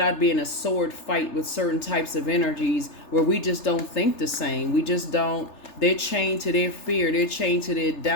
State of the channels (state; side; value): late; right; 3.3 ms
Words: be in a sword fight with certain types of energies where we just don't think the same. We just don't. They're chained to their fear. They're chained to their